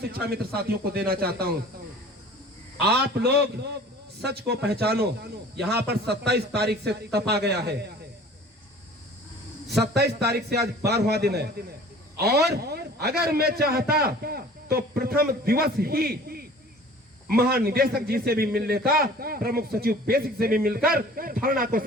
मित्र साथियों को देना चाहता हूं। आप लोग सच को पहचानो। यहां पर 27 तारीख से तपा गया है। 27 तारीख से आज 12वां दिन है। और अगर मैं चाहता तो प्रथम दिवस ही महानिदेशक जी से भी मिल लेता, प्रमुख सचिव बेसिक से भी मिलकर धरना को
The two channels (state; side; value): normal; both; correlation 0.46